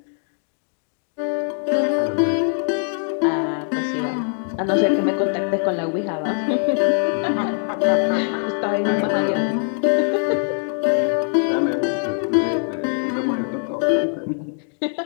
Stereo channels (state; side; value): silent; right; 55 dB below the other